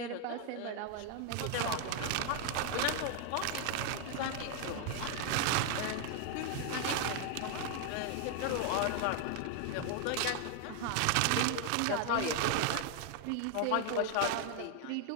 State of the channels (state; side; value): different; both; correlation 0.00